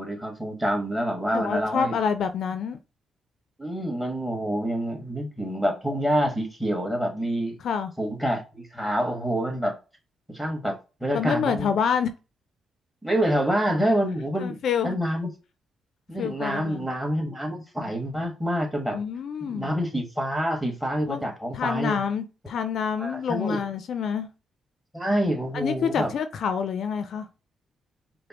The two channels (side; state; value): both; normal; correlation 0.81